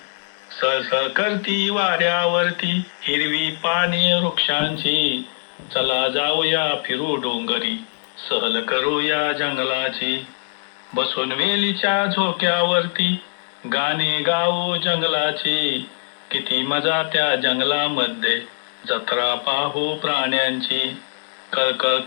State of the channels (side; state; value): right; silent; 64 dB below the other